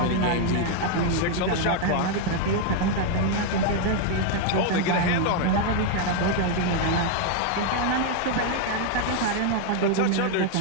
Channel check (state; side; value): different; both; correlation 0.01